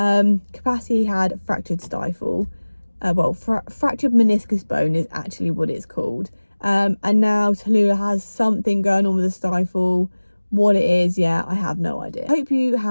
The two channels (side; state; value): both; inverted; correlation -1.00